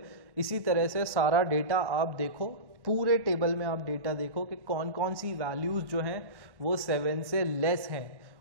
इसी तरह से सारा डेटा आप देखो, पूरे टेबल में आप डेटा देखो कि कौन कौन सी वैल्यूज जो हैं वो 7 से लेस हैं,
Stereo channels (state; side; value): late; left; 1.1 ms